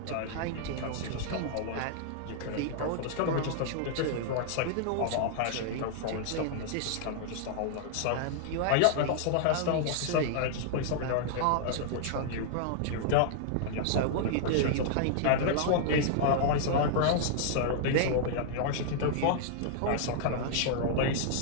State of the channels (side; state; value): both; different; correlation -0.01